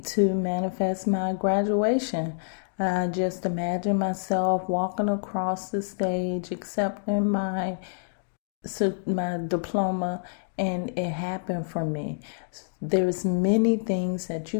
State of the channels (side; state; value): right; silent; digital silence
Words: to manifest my graduation. I just imagine myself walking across the stage, accepting my diploma, and it happened for me. There's many things that